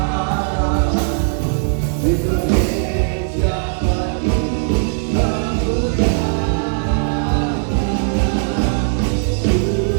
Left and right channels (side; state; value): left; silent; digital silence